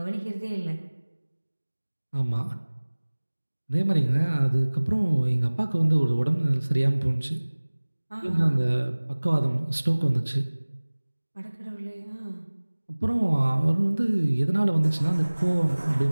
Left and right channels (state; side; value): inverted; both; correlation -1.00